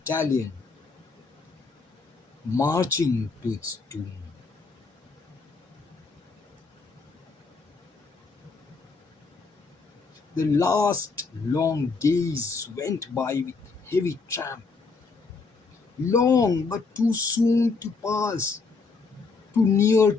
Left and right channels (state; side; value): quieter; right; 4.3 dB